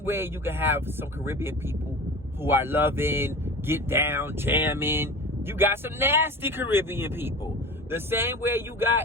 way you can have some Caribbean people who are loving, get down, jamming. You got some nasty Caribbean people. The same way you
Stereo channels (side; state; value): both; normal; correlation 0.35